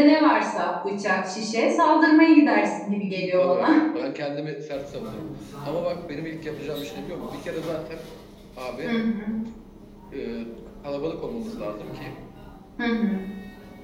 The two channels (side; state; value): both; identical; correlation 1.00